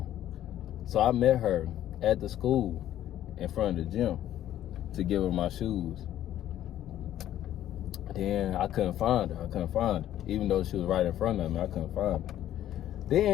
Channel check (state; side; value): quieter; right; 12.2 dB